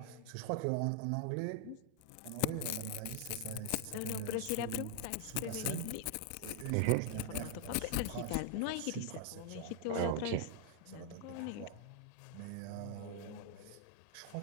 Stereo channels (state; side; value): different; both; correlation 0.00